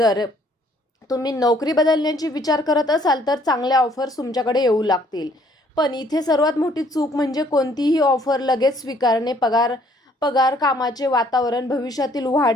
तुम्ही नोकरी बदलण्याची विचार करत असाल तर चांगल्या ऑफर्स तुमच्याकडे येऊ लागतील. पण इथे सर्वात मोठी चूक म्हणजे कोणतीही ऑफर लगेच स्वीकारणे. पगार, कामाचे वातावरण, भविष्यातील वाढ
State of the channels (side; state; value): both; normal; correlation 0.62